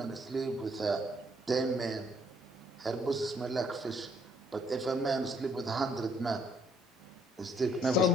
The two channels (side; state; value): both; normal; correlation 0.66